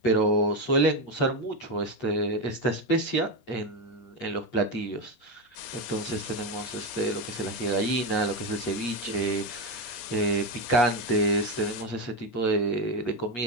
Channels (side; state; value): right; late; 8.4 ms